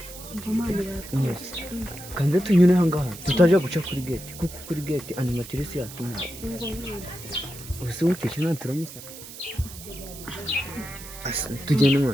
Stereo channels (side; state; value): right; noise; hiss, 14 dB below the sound